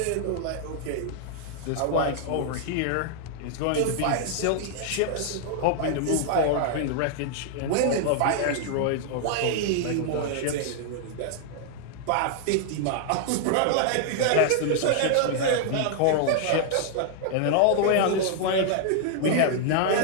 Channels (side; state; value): both; different; correlation 0.00